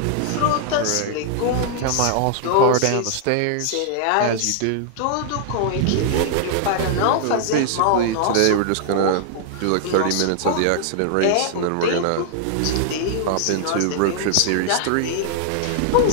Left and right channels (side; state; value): both; different; correlation -0.01